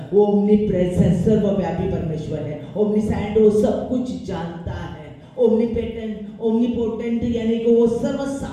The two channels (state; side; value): identical; both; correlation 1.00